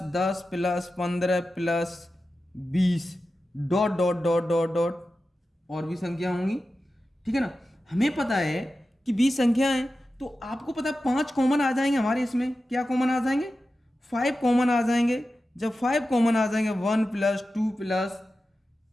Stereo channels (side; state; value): both; normal; correlation 0.93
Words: 10 plus 15 plus 20 dot dot dot dot dot और भी संख्या होंगी। ठीक है ना। हमें पता है कि 20 संख्या है, तो आपको पता है 5 कॉमन आ जाएंगे हमारे इसमें। क्या कॉमन आ जाएंगे? 5 कॉमन आ जाएंगे। जब 5 कॉमन आ जाएंगे, 1 plus 2 plus